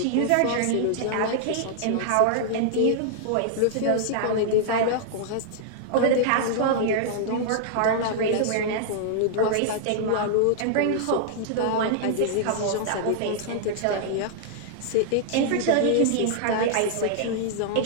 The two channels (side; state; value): both; different; correlation -0.01